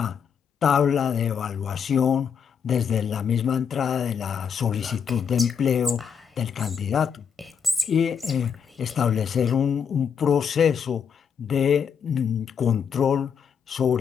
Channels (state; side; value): quieter; right; 7.1 dB